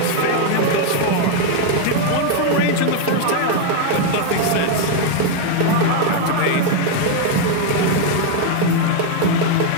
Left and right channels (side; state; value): both; different; correlation 0.01